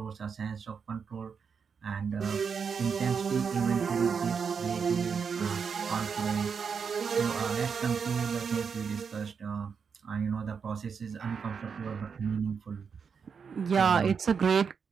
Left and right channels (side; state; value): left; quieter; 6.2 dB